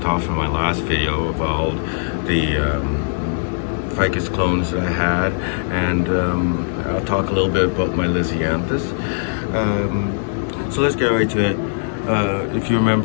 off in my last video about the ficus clones that I had, and I'll talk a little bit about my lisianthus. So let's get right to it. If you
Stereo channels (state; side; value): silent; right; digital silence